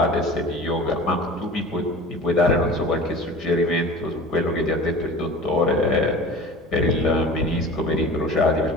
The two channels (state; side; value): normal; both; correlation 0.38